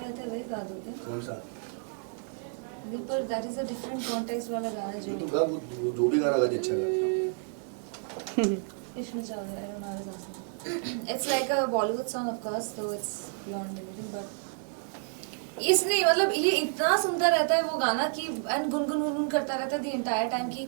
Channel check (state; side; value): silent; left; 55 dB below the other